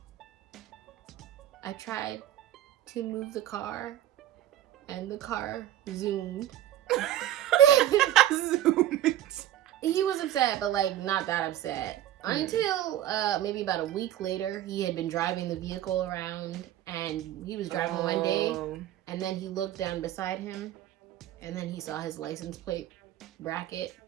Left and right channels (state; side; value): quieter; left; 12.6 dB